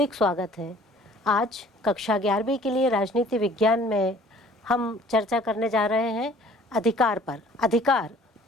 स्वागत है। आज कक्षा 11वीं के लिए राजनीति विज्ञान में हम चर्चा करने जा रहे हैं अधिकार पर। अधिकार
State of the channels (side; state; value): both; normal; correlation 0.53